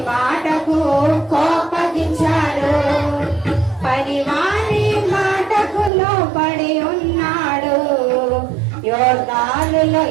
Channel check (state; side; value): drops out; left; at 5.9 s